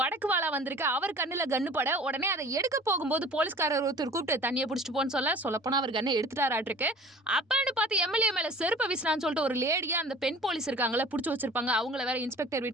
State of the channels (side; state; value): both; normal; correlation 0.45